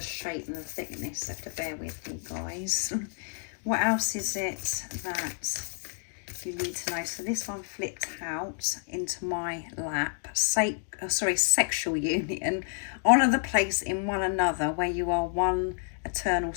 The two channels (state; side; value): silent; right; 58 dB below the other